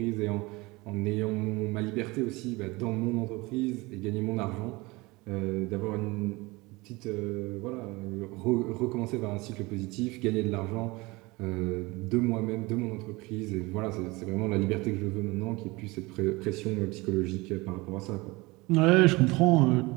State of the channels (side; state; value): left; quieter; 23.1 dB